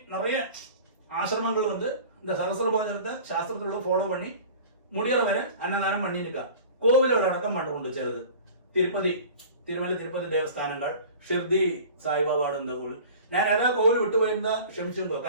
நிறைய ஆசிரமங்கள் வந்து இந்த சகஸ்ர போஜனத்தை சாஸ்திரத்தோட ஃபாலோ பண்ணி முடிகிற வரை அன்னதானம் பண்ணிருக்கா. கோவில்கள் அடக்கம் பண்ணுண்டு சிலது. തിരുമല തിരുപ്പതി ദേവസ്ഥാനങ്ങൾ, ഷിർദി സായിബാബാട് എന്ന കോവിൽ. ഞാൻ ഏതാ കോവിൽ വിട്ടുപോയിരുന്ന ക്ഷമിച്ചിരുന്നു.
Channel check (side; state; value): both; inverted; correlation -0.42